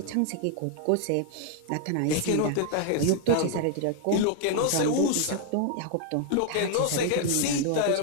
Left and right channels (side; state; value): both; different; correlation 0.00